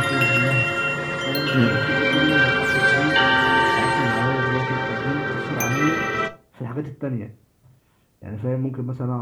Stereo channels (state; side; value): identical; both; correlation 1.00